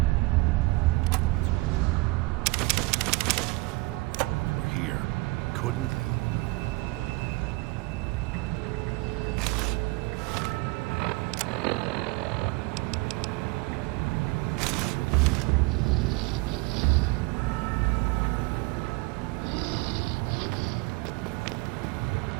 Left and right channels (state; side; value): quieter; left; 24.0 dB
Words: It's your own fault you're here. Couldn't leave well enough alone.